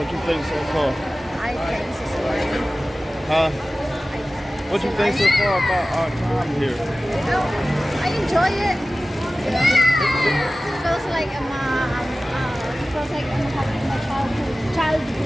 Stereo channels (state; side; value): normal; both; correlation 0.96